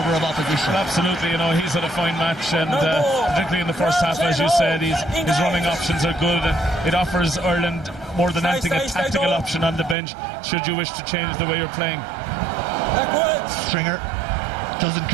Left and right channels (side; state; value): left; drops out; at 10.0 s